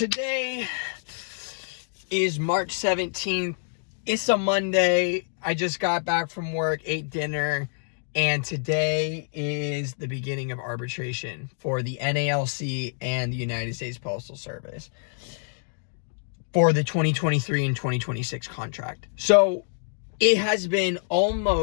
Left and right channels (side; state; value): right; silent; digital silence